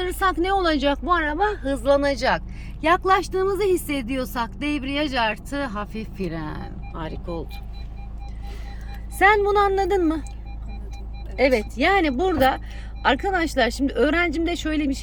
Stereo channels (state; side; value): identical; both; correlation 1.00